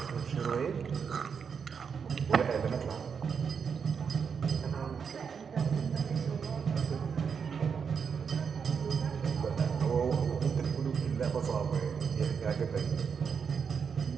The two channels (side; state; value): left; quieter; 6.4 dB